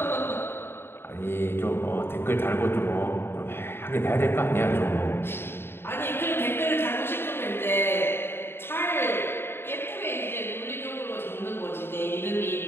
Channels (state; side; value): late; right; 0.11 ms